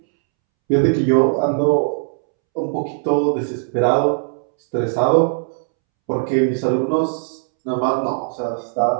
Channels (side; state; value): left; silent; 66 dB below the other